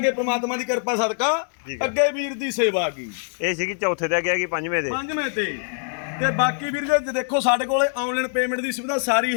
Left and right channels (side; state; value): right; silent; 63 dB below the other